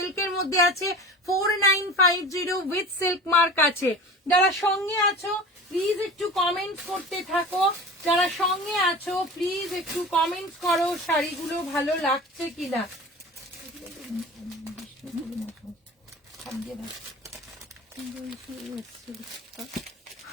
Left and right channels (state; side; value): normal; both; correlation 0.36